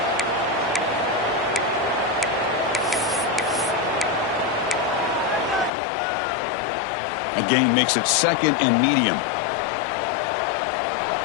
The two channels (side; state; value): right; drops out; at 5.7 s